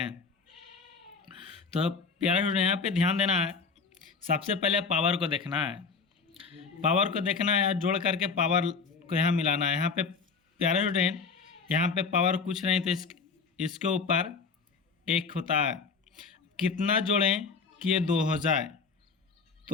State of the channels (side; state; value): right; quieter; 5.0 dB